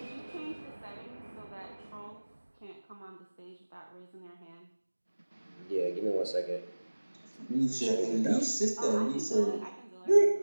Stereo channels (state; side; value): inverted; both; correlation -1.00